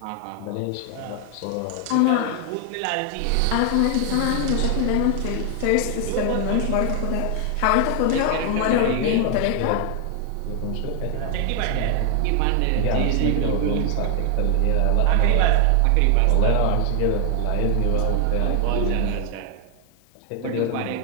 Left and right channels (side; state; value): both; different; correlation 0.00